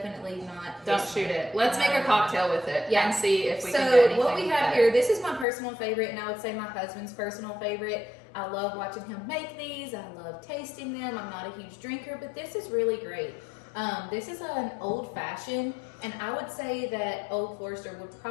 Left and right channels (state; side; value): drops out; right; at 5.5 s